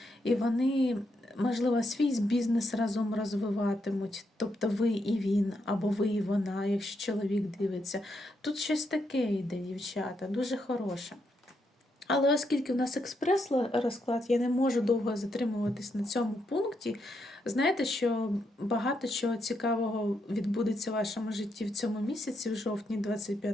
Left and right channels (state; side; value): normal; both; correlation 0.80